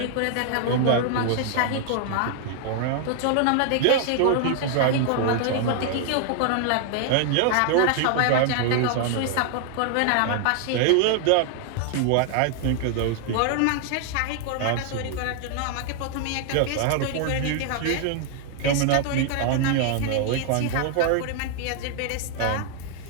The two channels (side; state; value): both; different; correlation 0.00